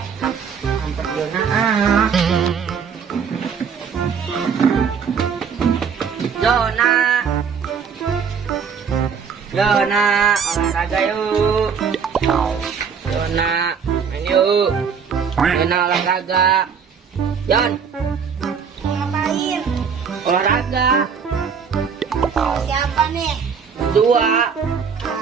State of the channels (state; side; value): quieter; left; 6.6 dB